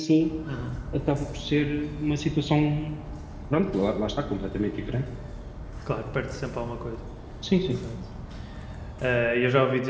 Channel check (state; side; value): identical; both; correlation 1.00